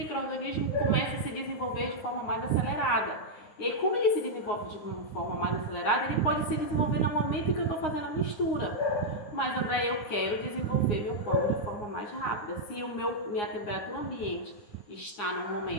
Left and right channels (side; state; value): right; late; 9.7 ms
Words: começa a se desenvolver de forma mais acelerada. E aí, como ele se desenvolve de uma forma mais acelerada, ele pode se desenvolver no momento em que eu estou fazendo a mistura. Mas, André, eu quero desenvolver meu pão de forma mais rápida. Se minha temperatura ambiente está no